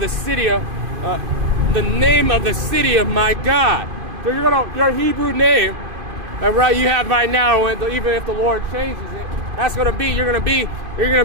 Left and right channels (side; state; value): left; late; 2.5 ms